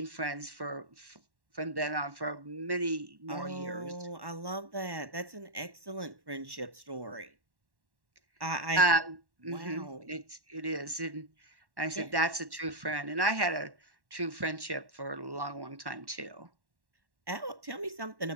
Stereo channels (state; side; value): late; left; 1.1 ms